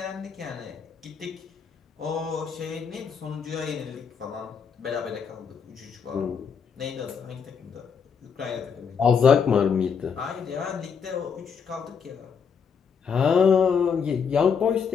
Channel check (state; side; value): quieter; right; 6.5 dB